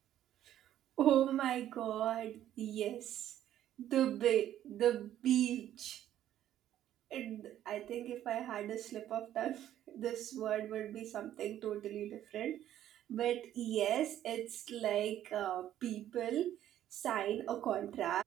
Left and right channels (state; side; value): quieter; left; 11.8 dB